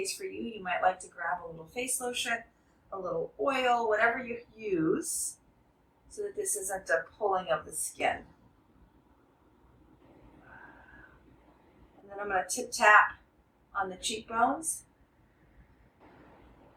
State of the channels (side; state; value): both; identical; correlation 1.00